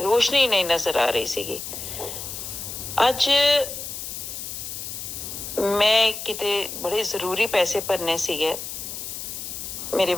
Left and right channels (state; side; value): noise; left; hiss, 7 dB below the sound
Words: ਰੋਸ਼ਨੀ ਨਹੀਂ ਨਜ਼ਰ ਆ ਰਹੀ ਸੀਗੀ। ਅੱਜ ਮੈਂ ਕਿਤੇ ਬੜੇ ਜ਼ਰੂਰੀ ਪੈਸੇ ਭਰਨੇ ਸੀਗੇ ਮੇਰੇ